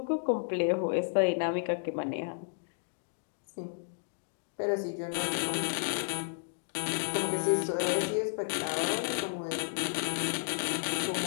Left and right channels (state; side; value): silent; right; digital silence